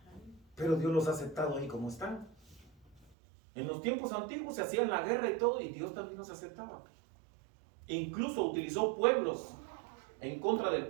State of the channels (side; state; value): left; drops out; at 3.2 s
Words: Pero Dios los ha aceptado ahí como están. En los tiempos antiguos se hacían la guerra y todo, y Dios también nos aceptaba. E incluso utilizó pueblos en contra del